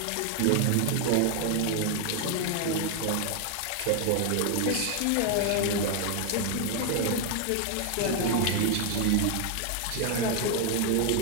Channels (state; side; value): different; both; correlation 0.00